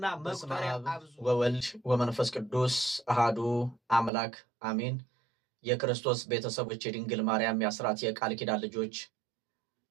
መቁጠሪያ አብዙ። ወወልድ ወመንፈስ ቅዱስ አሃዱ አምላክ አሜን። የክርስቶስ ቤተሰቦች፣ የድንግል ማርያም የአስራት የቃል ኪዳን ልጆች፣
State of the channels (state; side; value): drops out; left; at 4.1 s